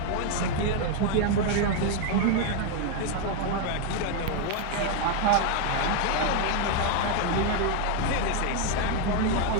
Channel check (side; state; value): both; different; correlation 0.01